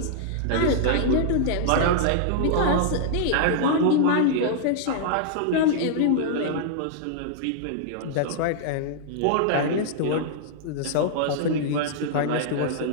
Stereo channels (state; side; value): different; both; correlation -0.01